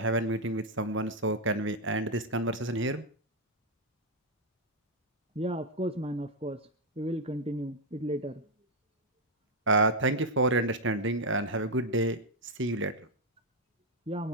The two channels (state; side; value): normal; both; correlation 0.01